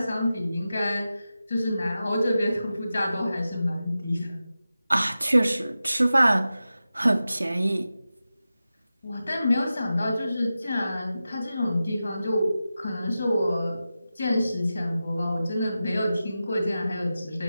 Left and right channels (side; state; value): both; inverted; correlation -0.93